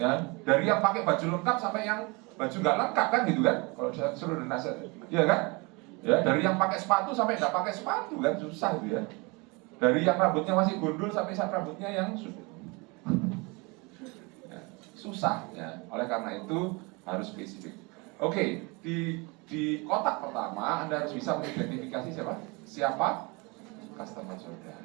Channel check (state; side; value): quieter; left; 27.9 dB